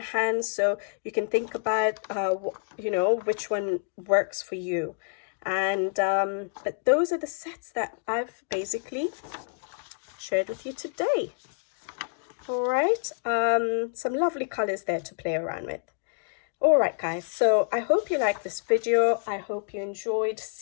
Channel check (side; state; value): right; silent; digital silence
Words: hands, so you can think about, you know, which one works for you. And but those are the sets that I've basically shared with you today. All right, some lovely colors there to play around with. Alright guys, so I hope you liked this video. I hope you enjoyed